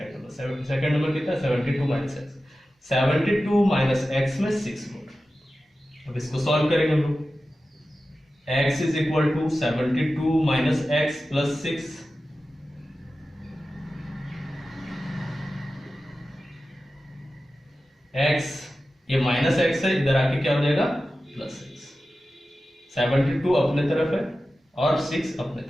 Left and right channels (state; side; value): normal; both; correlation 0.94